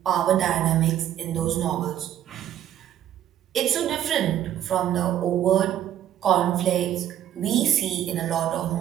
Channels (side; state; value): left; quieter; 11.2 dB